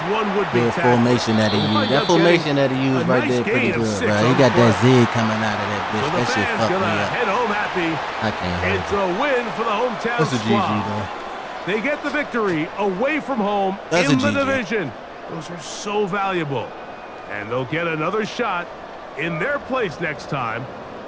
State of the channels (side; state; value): both; identical; correlation 1.00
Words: one would-be little tackle. formation that he used. That formation that he used right there pretty good, bro. He got that zig coming out of that So bitch. the That shit fans fucked me gonna up. head home happy. I can't hold It's it. a win for the hometown That's a GG squad. though. They get the victory away from home That's in a the GG. division. Those are so valuable. And they'll get another shot in their place next time,